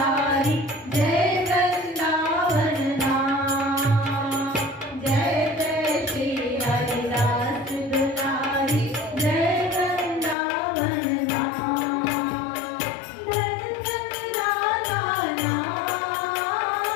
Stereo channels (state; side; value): drops out; right; at 10.4 s